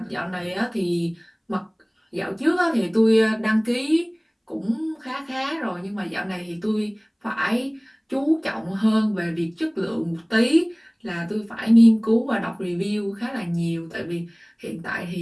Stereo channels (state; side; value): identical; both; correlation 1.00